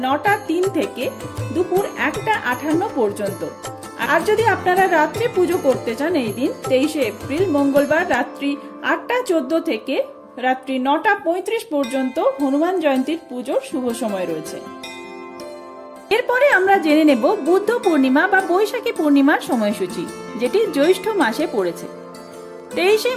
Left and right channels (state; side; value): identical; both; correlation 1.00